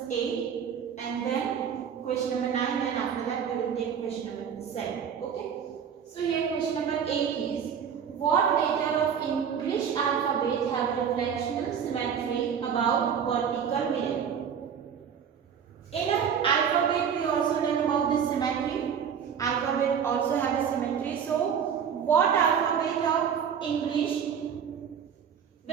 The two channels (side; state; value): left; quieter; 7.7 dB